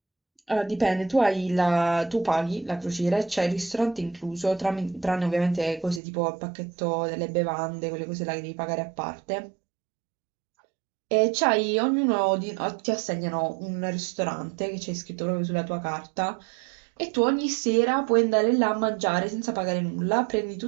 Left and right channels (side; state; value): left; drops out; at 6.0 s